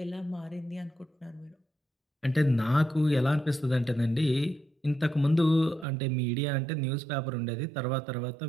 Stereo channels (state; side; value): drops out; left; at 5.9 s